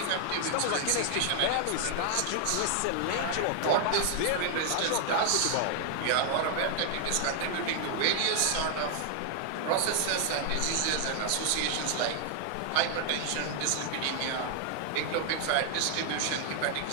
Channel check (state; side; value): different; both; correlation 0.00